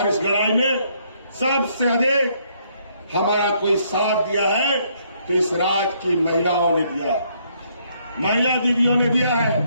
इस लड़ाई में सबसे अधिक हमारा कोई साथ दिया है तो इस राज्य की महिलाओं ने दिया है, महिला दीदियों ने दिया है।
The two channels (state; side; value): inverted; both; correlation -0.69